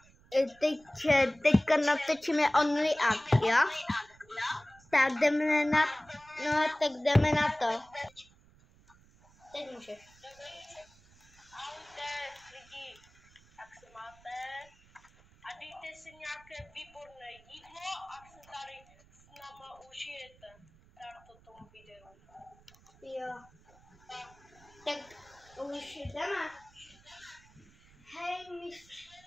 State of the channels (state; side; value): noise; right; rumble, 27 dB below the sound